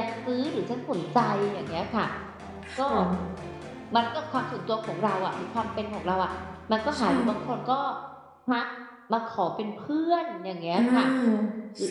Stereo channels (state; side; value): identical; both; correlation 1.00